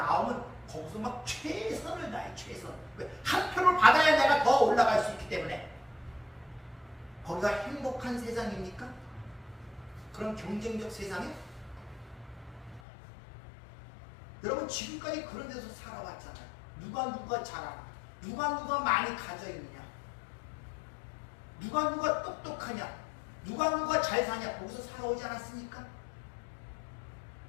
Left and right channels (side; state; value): right; drops out; at 12.8 s